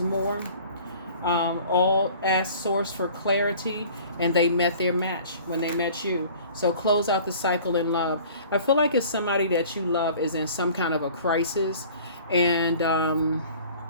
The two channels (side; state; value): both; inverted; correlation -0.48